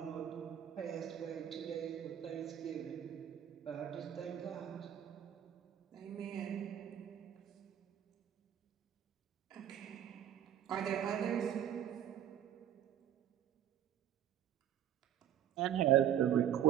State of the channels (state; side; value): quieter; left; 10.4 dB